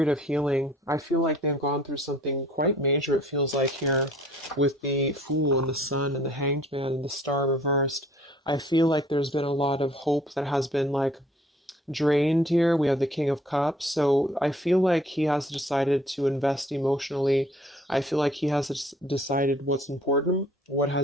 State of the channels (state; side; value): normal; both; correlation 0.56